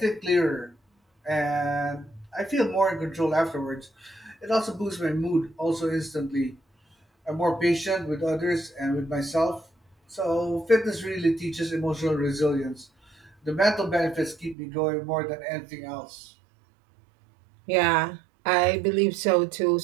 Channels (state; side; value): drops out; left; at 14.6 s